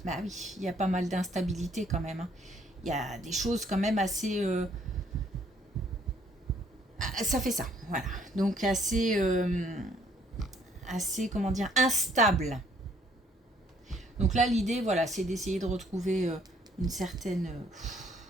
Bah oui, il y a pas mal d'instabilité quand même. Hein. Il y a des choses quand même assez... ça fait ça, voilà. Donc assez, assez, comment dire, instable. Donc là, l'idée, voilà, c'est d'essayer de retrouver une certaine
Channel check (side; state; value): both; normal; correlation 0.64